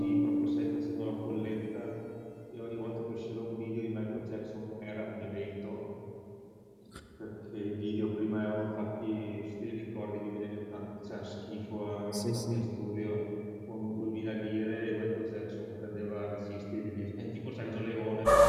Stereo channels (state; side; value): identical; both; correlation 1.00